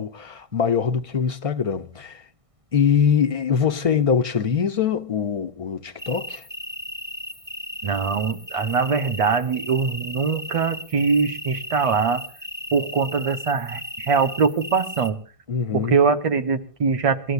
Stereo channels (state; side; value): late; left; 1.6 ms